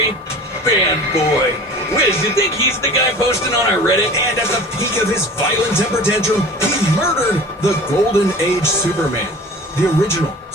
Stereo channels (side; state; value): both; normal; correlation 0.40